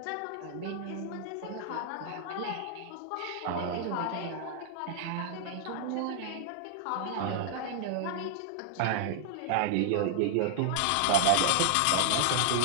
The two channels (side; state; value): both; different; correlation 0.00